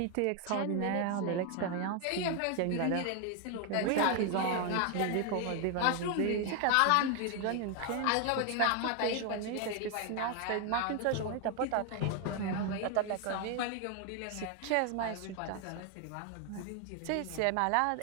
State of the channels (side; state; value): both; different; correlation 0.01